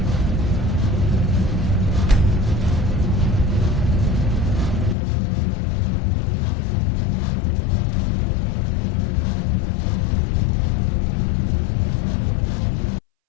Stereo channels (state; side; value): drops out; right; at 5.0 s